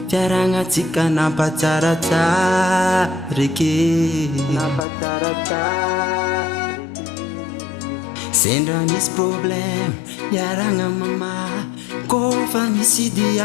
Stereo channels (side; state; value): right; drops out; at 4.9 s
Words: fiaragnatsika nampatsaratsarake sendra misy problème miaragna mama kofa misy